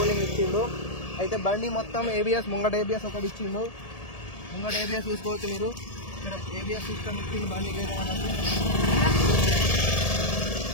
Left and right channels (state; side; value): late; right; 1.7 ms